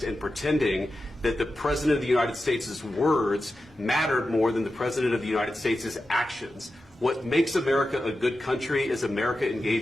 and pretending that the President of the United States' words mattered more than the President of the United States' actions. What makes America a good country is America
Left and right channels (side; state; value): both; normal; correlation 0.92